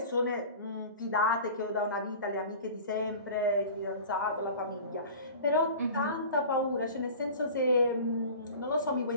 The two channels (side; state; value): both; inverted; correlation -0.39